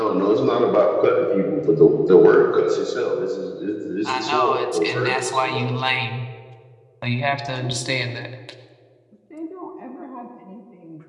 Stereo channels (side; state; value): both; identical; correlation 1.00